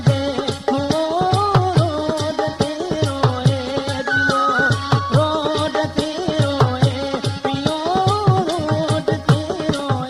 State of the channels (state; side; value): identical; both; correlation 1.00